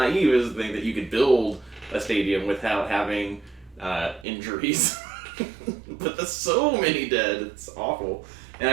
as to think that you could build a stadium without having injuries. But there's so many dead. It's awful. And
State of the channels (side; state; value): left; drops out; at 4.2 s